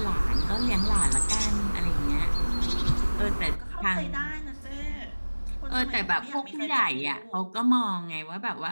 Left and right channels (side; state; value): both; inverted; correlation -1.00